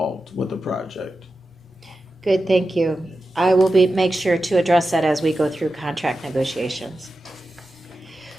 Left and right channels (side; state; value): both; normal; correlation 0.92